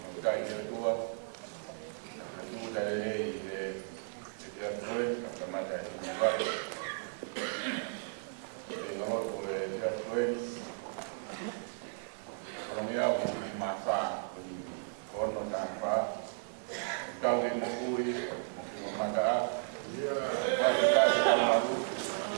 kai tua tu dari dia tuan sama ada di luar ngoro tu dia tuan ekonomi au masa ini kono tanpa kau yang mengui mungkin memandang kita sedang lalu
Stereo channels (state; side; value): silent; left; 55 dB below the other